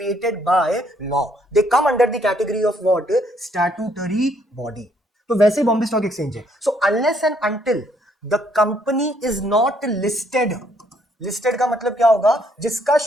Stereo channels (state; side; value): normal; both; correlation 0.68